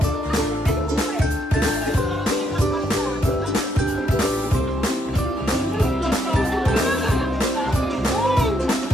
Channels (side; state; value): both; normal; correlation 0.75